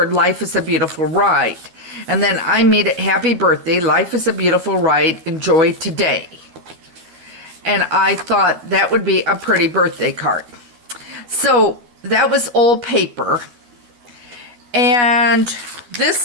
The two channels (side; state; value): left; late; 12 ms